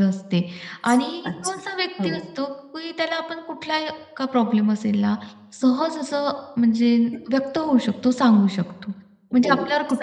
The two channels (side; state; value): both; identical; correlation 1.00